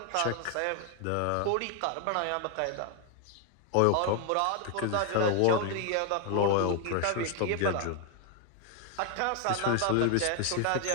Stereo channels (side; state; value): both; different; correlation 0.00